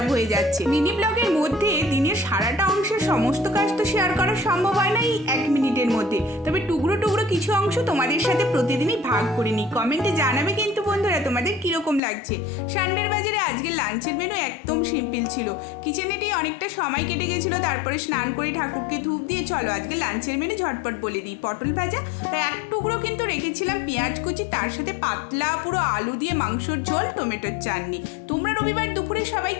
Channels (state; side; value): drops out; right; at 12.0 s